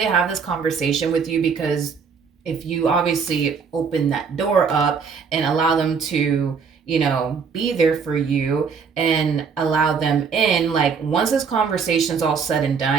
have this conversation with you, because if you obviously open that door up and allow them to, you know, be there for you and allow them in, like, once this conversation's all said and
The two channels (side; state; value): left; quieter; 5.9 dB